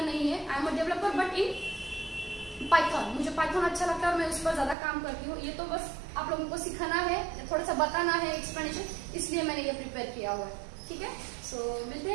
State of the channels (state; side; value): drops out; left; at 4.8 s